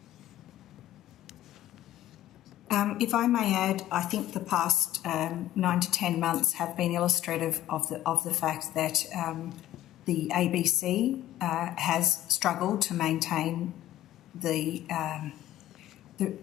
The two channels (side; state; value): right; quieter; 13.2 dB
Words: If I may add, I think the past 9 to 10 months have been illustrative of the fact that the ABC has struggled to maintain the